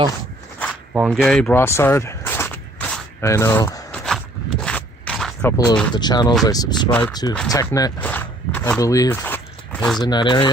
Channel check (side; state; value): both; normal; correlation 0.59